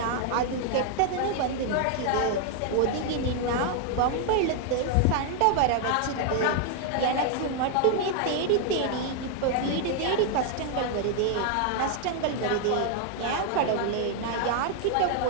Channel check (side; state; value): both; different; correlation 0.00